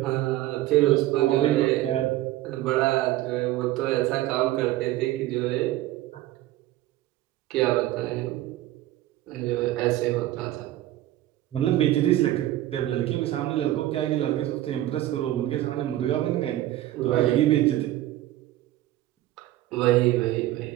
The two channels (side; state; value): left; quieter; 15.0 dB